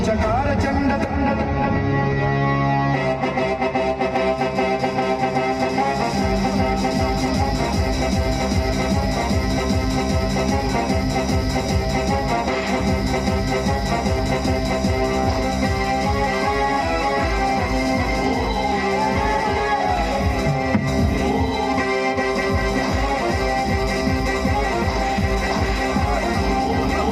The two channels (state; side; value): identical; both; correlation 1.00